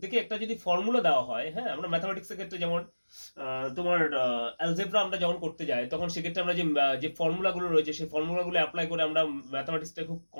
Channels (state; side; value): inverted; both; correlation -1.00